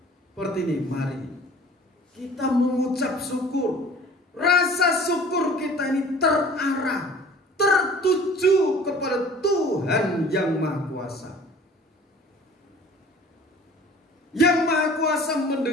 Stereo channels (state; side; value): normal; both; correlation 0.47